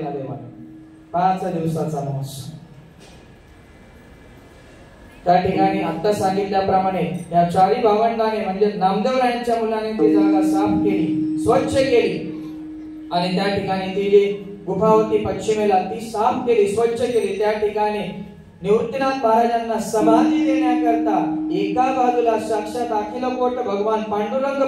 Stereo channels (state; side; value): identical; both; correlation 1.00